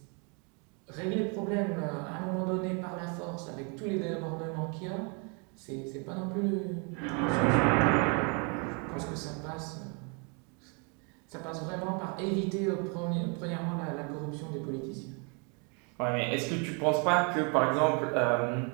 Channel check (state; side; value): quieter; left; 35.5 dB